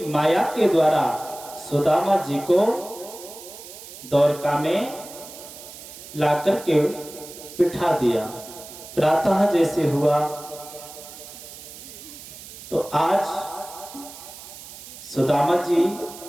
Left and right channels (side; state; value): right; noise; hiss, 15 dB below the sound